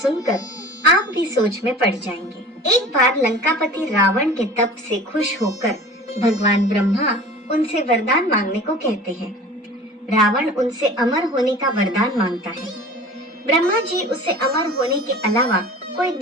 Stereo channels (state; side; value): normal; both; correlation 0.40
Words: आप भी सोच में पड़ जाएंगे। एक बार लंकापति रावण के तप से खुश होकर भगवान ब्रह्मा उनसे वरदान मांगने को कहते हैं। रावण उनसे अमर होने का वरदान मांगता है। ब्रह्मा जी उसे अमर होने के अलावा कोई